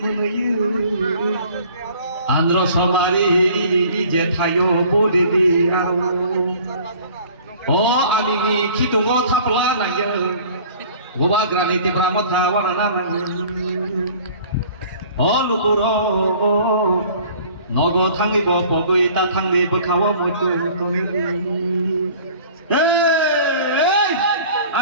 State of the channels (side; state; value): both; inverted; correlation -0.49